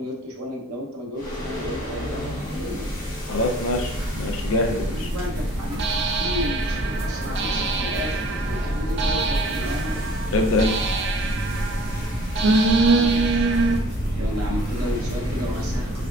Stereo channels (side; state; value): both; normal; correlation 0.53